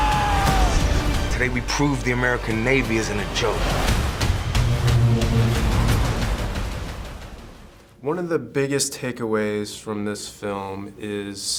Today we prove the American Navy isn't a joke. One of the biggest takeaways from this film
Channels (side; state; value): both; identical; correlation 1.00